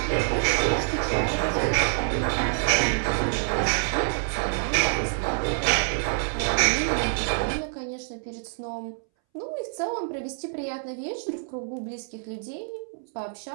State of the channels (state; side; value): silent; left; 61 dB below the other